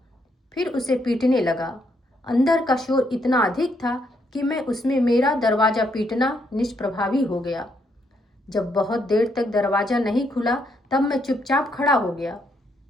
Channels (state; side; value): normal; both; correlation 0.75